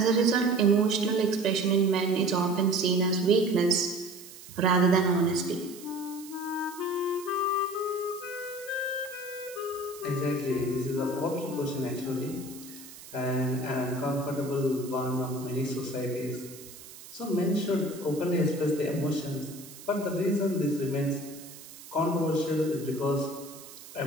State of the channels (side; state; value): right; noise; hiss, 17 dB below the sound